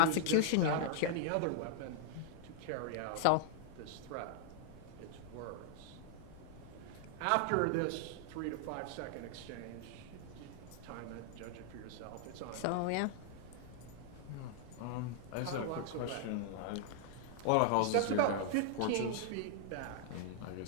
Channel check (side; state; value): both; different; correlation -0.01